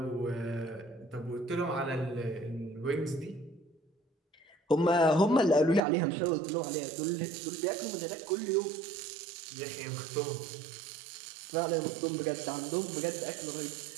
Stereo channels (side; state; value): left; drops out; at 5.8 s